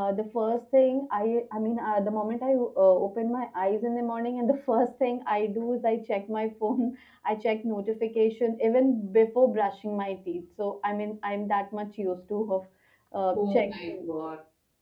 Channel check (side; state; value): both; identical; correlation 1.00